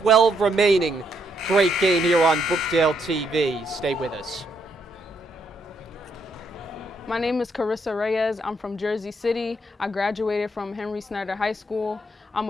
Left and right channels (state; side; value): normal; both; correlation 0.75